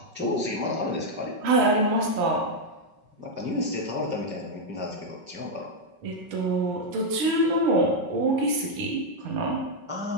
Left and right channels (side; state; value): left; late; 5.3 ms